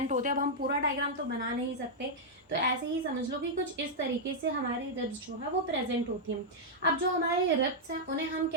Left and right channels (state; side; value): normal; both; correlation -0.05